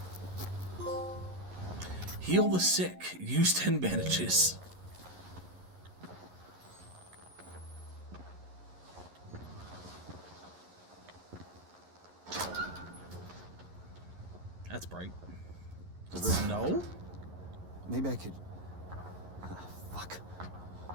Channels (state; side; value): late; left; 11 ms